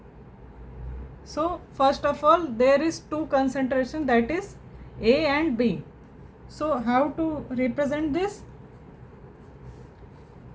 So first of all, there is two concentration, that is A and B. So how to represent this?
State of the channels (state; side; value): identical; both; correlation 1.00